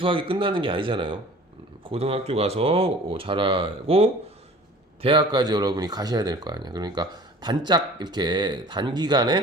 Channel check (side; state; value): both; normal; correlation 0.46